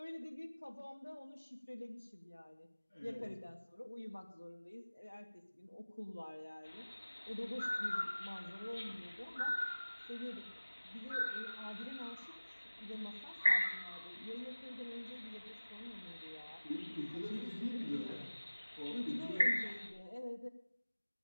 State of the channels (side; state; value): both; inverted; correlation -1.00